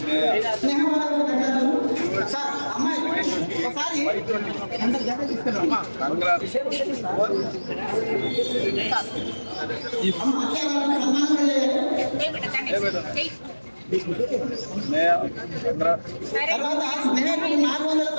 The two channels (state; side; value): inverted; both; correlation -1.00